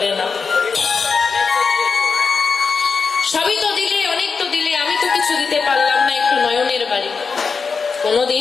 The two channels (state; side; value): quieter; right; 5.1 dB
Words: না। সবই তো দিলে, অনেক তো দিলে, আমি তো কিছু দিতে পারলাম না, একটু নয়নের বাড়ি,